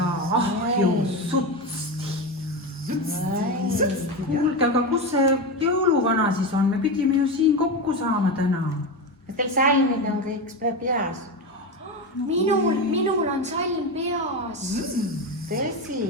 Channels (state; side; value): normal; both; correlation 0.17